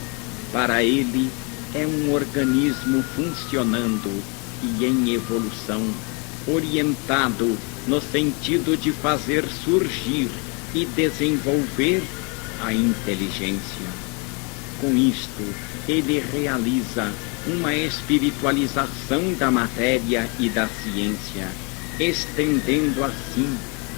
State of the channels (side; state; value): right; quieter; 33.0 dB